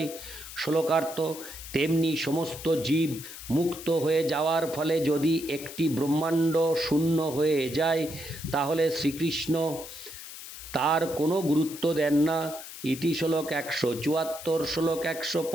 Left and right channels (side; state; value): left; noise; hiss, 12 dB below the sound